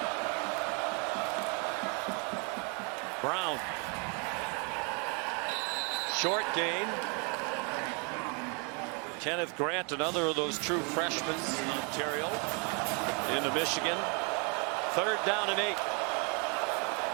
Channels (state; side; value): quieter; left; 34.9 dB